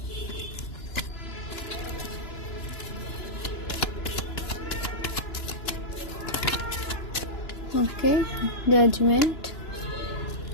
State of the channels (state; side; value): late; right; 2.9 ms